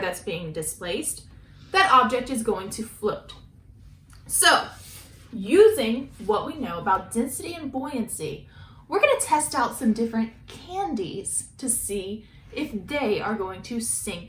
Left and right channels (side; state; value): both; identical; correlation 1.00